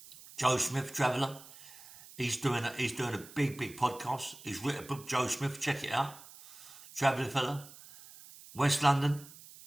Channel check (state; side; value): noise; right; hiss, 19 dB below the sound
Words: Joe Smith, Traveller. He's doing a big podcast. He's written a book, Joe Smith, check it out. Traveller fella. West London.